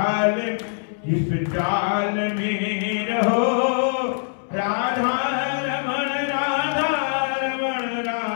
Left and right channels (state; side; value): silent; right; 63 dB below the other